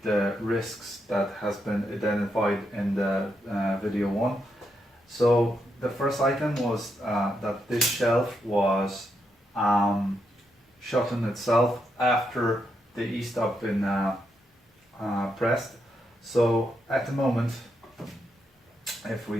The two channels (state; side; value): normal; both; correlation 0.81